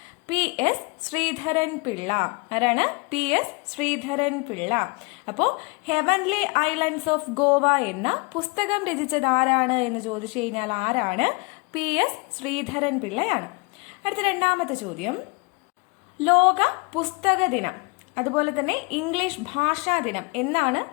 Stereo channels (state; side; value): quieter; right; 30.2 dB